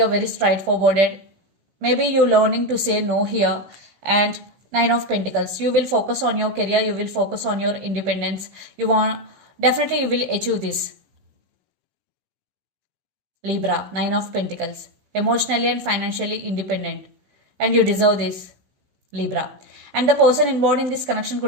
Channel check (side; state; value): left; late; 16 ms